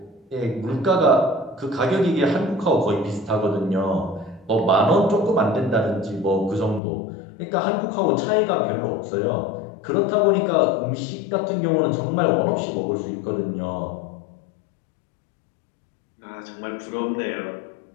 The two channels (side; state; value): right; drops out; at 6.8 s